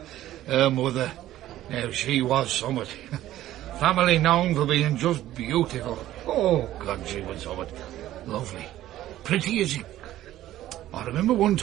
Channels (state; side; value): quieter; left; 13.9 dB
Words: Her mother. Now, she was somewhat. Family known for being just beautiful. Oh, God, she was somewhat. Lovely. Pretty as you... I remember one